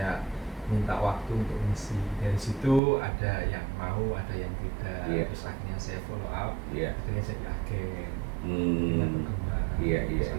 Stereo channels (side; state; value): left; drops out; at 2.8 s